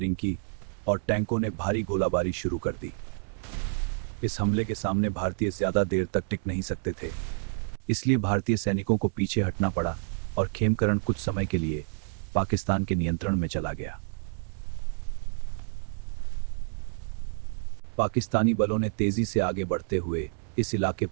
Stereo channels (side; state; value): left; silent; digital silence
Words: की और टैंकों ने भारी गोलाबारी शुरू कर दी। इस हमले के सामने भारतीय ज्यादा देर तक टिक नहीं सकते थे, इसलिए भारतीय सैनिकों को पीछे हटना पड़ा और खेमकरण कुछ समय के लिए पाकिस्तान के नियंत्रण में चला गया। पाकिस्तानी बलों ने तेजी से आगे बढ़ते हुए इस इलाके